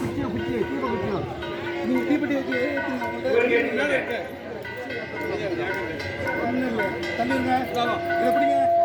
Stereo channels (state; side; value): identical; both; correlation 1.00